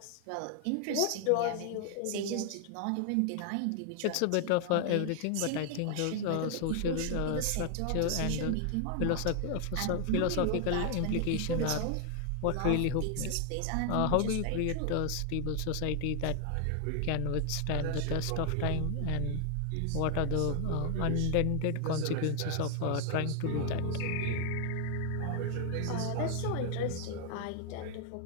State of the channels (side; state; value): both; different; correlation 0.00